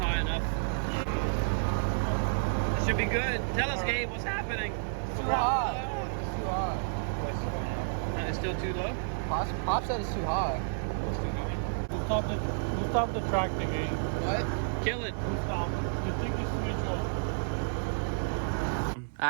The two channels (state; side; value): silent; left; 57 dB below the other